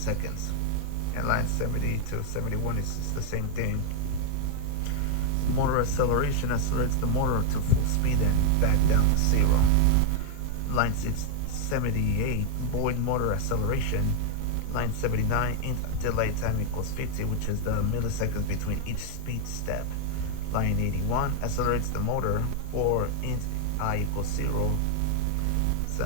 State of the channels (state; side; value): different; both; correlation 0.01